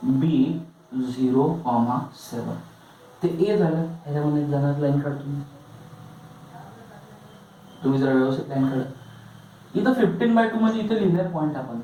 बी 0,7 ते ए झालं. ह्याच्यामध्ये जाणार लाईन काढतो तुम्ही जरा व्यवस्थित लाईन काढा. इथं 15/2 मध्ये इथं लिहिलंय पॉइंट आपण.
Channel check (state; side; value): identical; both; correlation 1.00